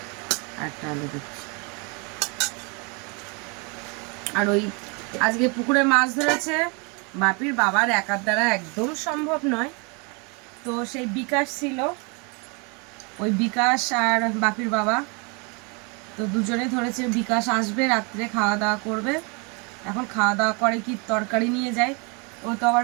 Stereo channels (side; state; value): left; quieter; 32.3 dB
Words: একটা আলু দিচ্ছি। আর ওই আজকে পুকুরে মাছ ধরেছে, বাপির বাবার একার দ্বারা একদম সম্ভব নয়, তো সেই বিকাশ ছিল, ওই বিকাশ আর বাপির বাবা তো দুজনে ধরেছে। বিকাশ আসবে রাত্রে, খাওয়া দাওয়া করবে, এখন খাওয়া দাওয়া করে কি তরকারি নিয়ে যায়, ও তো আবার